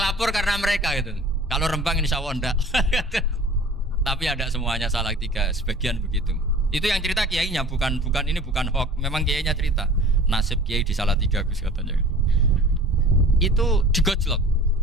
karena mereka gitu. Kalau Rembang insya Allah enggak. Tapi ada semuanya Salatiga, sebagian begitu. Itu yang cerita kiainya, bukan ini bukan hoax. Memang kiainya cerita nasib kiai di Salatiga Gus katanya. Itu digojlok,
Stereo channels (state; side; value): normal; both; correlation 0.44